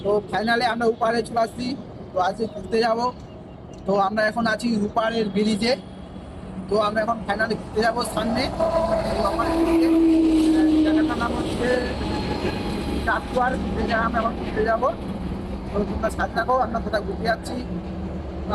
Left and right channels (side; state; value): both; identical; correlation 1.00